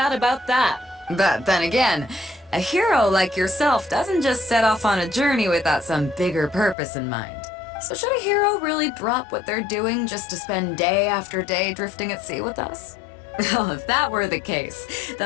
about that. But then again, a hero like yourself doesn't just set off on a journey without some bigger purpose in mind. So should a hero really drop what they're doing just to spend day after day drifting at sea with us? Well, if that were the case,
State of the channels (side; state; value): right; drops out; at 6.8 s